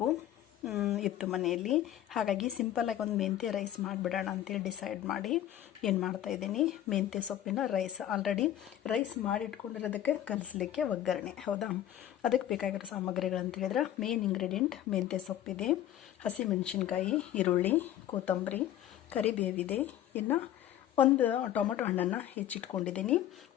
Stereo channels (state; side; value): quieter; right; 11.8 dB